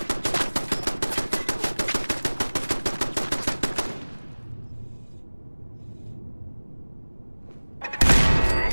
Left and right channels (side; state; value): both; inverted; correlation -1.00